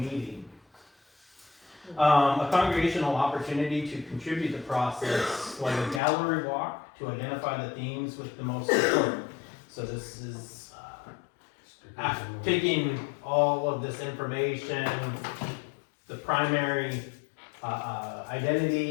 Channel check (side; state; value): right; drops out; at 6.0 s